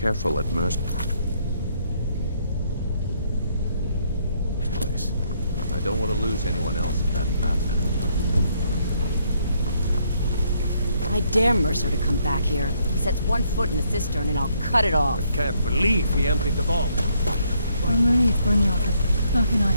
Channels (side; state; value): both; inverted; correlation -0.70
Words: at Mercer. Place. I don't want to lose anyone else in that madman. I dare Mercer to come back here. He sets one foot in the cistern and I'll cut it off. I can't believe he emptied the vault. I'm relieved, Brynjolf, but how can I